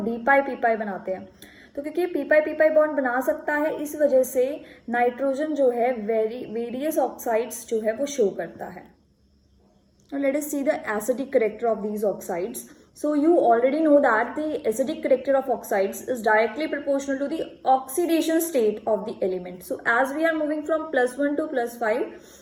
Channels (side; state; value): both; identical; correlation 1.00